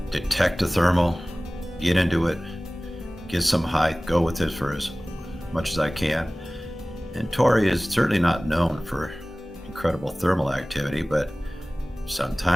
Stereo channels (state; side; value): normal; both; correlation 0.98